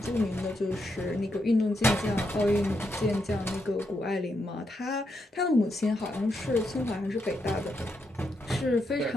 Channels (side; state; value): both; normal; correlation 0.81